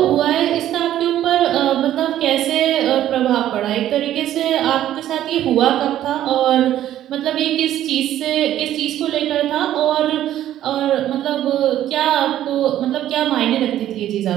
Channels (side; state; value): left; quieter; 12.3 dB